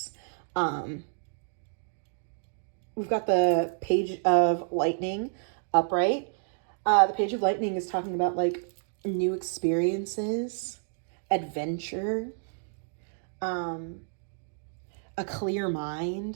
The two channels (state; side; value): silent; left; digital silence